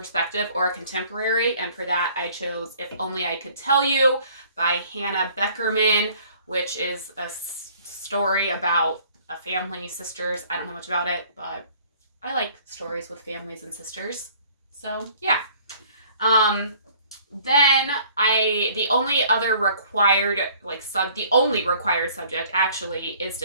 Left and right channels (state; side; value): inverted; both; correlation -0.55